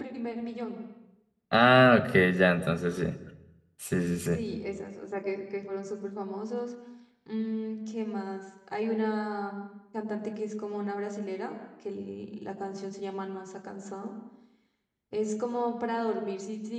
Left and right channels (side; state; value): both; identical; correlation 1.00